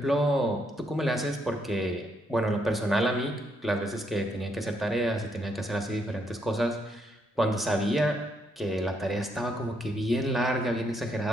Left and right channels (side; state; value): both; normal; correlation 0.75